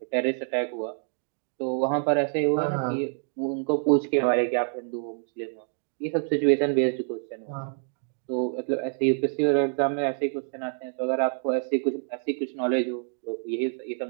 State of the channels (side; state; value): left; silent; 60 dB below the other